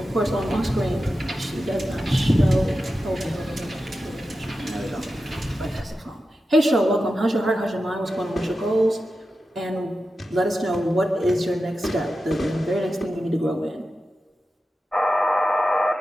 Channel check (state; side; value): normal; both; correlation 0.91